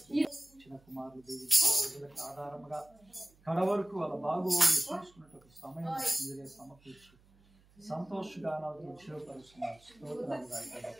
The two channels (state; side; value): noise; right; hum, 29 dB below the sound